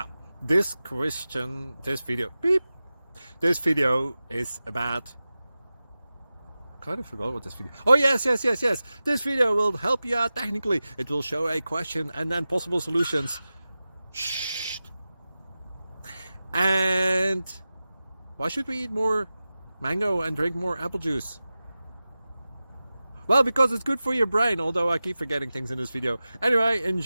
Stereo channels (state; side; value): inverted; both; correlation -0.95